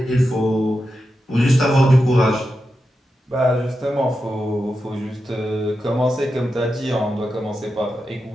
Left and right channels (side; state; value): both; normal; correlation 0.89